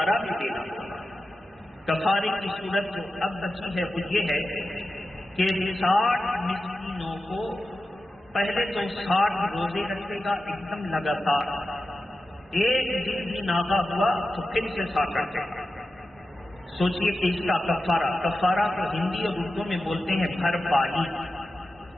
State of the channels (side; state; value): both; normal; correlation 0.92